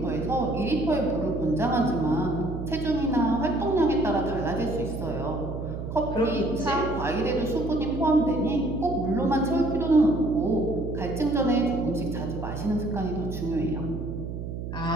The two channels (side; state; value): right; noise; hum, 6 dB below the sound